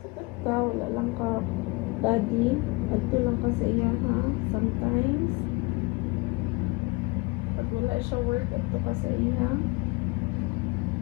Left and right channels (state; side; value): quieter; right; 26.1 dB